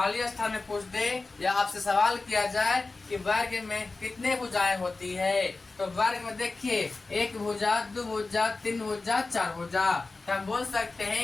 स्थान में पूछ दे या आपसे सवाल किया जाए कि वर्ग में कितने भुजाएं होती है, तो वर्ग में देखिए, एक भुजा, दो भुजा, तीन भुजा, चार भुजा। तो हम बोल सकते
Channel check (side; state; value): right; quieter; 3.6 dB